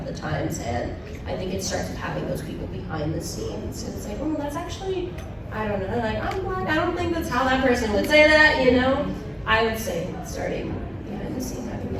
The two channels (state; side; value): identical; both; correlation 1.00